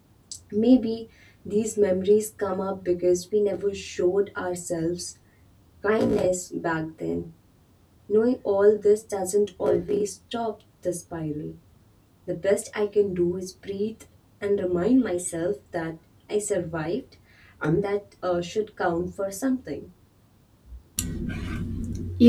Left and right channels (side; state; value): both; identical; correlation 1.00